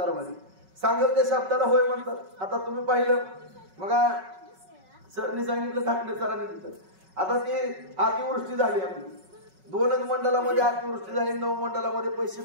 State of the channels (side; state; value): left; late; 5.3 ms